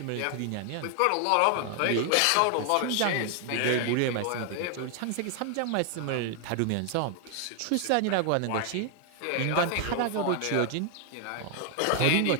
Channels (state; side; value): different; both; correlation 0.00